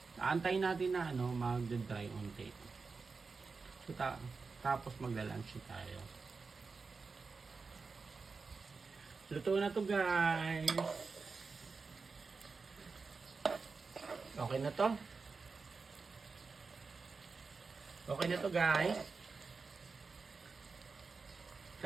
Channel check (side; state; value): left; quieter; 4.5 dB